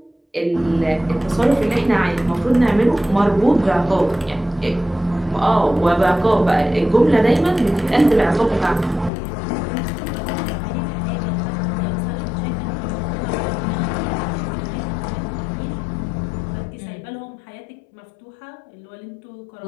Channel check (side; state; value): right; drops out; at 9.1 s